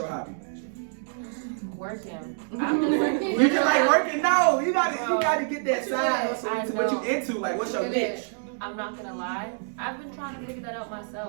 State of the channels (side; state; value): left; silent; digital silence